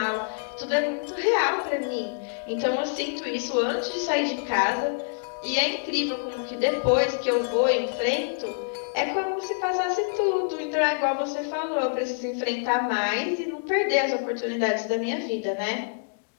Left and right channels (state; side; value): silent; right; digital silence